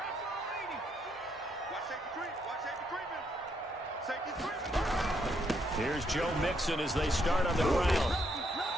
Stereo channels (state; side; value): normal; both; correlation 0.74